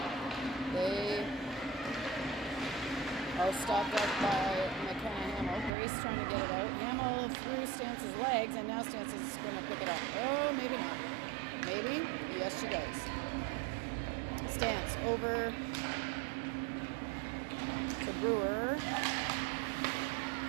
They are stopped up by McKenna Hamill. Grace trying to get it out. Hamill through Stance's legs, and now Stance is going to pick it up. Oh, maybe not. Maybe? Yes, she does. Stance over to Brewer.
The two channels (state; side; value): drops out; left; at 5.7 s